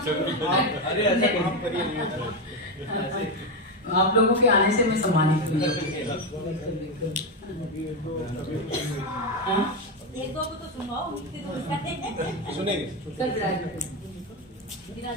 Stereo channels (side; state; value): both; normal; correlation 0.10